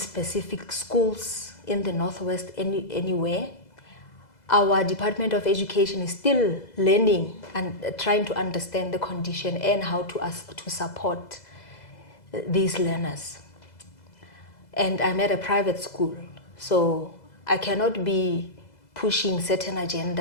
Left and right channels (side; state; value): right; late; 2.0 ms